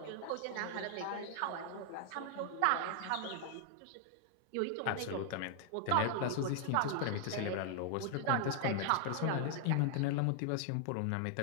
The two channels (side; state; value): both; different; correlation 0.00